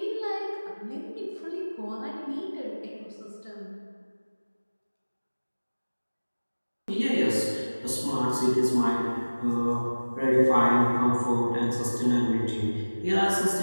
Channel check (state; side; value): inverted; both; correlation -1.00